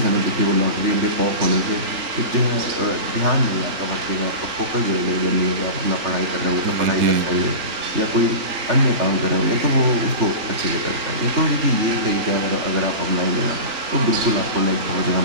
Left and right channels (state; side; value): late; left; 3.4 ms